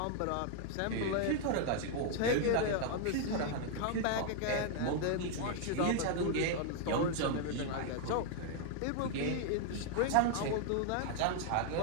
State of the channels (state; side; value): different; both; correlation 0.00